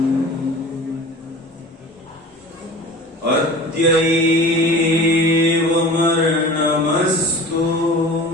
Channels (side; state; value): both; normal; correlation 0.39